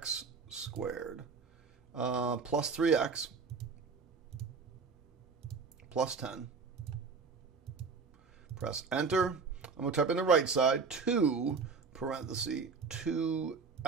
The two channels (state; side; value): quieter; left; 5.0 dB